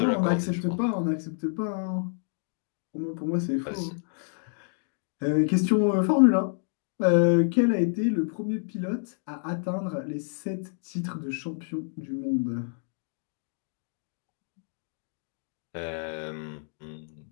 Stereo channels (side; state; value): right; silent; 59 dB below the other